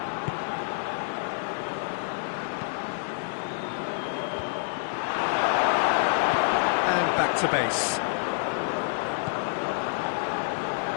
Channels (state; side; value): silent; right; digital silence